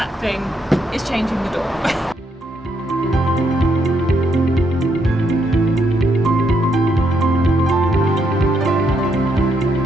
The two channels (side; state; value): both; normal; correlation 0.76